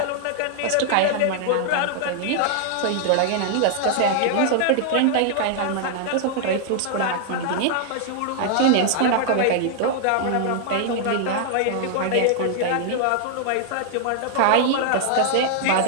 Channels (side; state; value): both; different; correlation -0.01